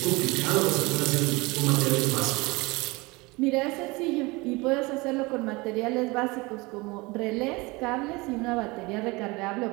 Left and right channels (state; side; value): quieter; left; 24.2 dB